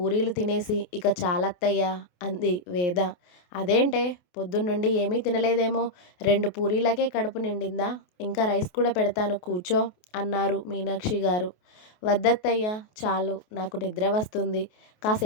తినేసి, ఇక చాలత్తయ్యా అంది వేద. అదేంటే పొద్దున్నుండి ఏమీ తినలేదేమో, 2 పూరీలకే కడుపు నిండిందా? ఇంకా రైస్ కూడా పెడతాను కూర్చో అన్నారు మీనాక్షి గారు. వద్దత్తయ్యా, చాలు, నాకు నిద్ర వస్తుంది,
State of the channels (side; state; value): right; late; 28 ms